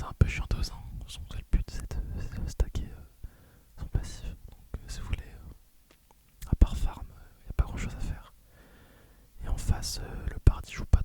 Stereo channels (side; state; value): both; identical; correlation 1.00